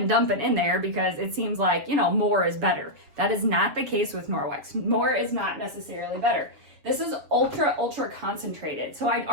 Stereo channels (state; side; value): late; left; 7.4 ms